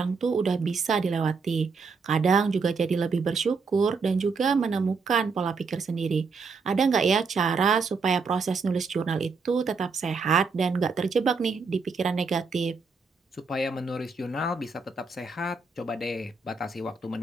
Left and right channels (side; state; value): left; quieter; 4.7 dB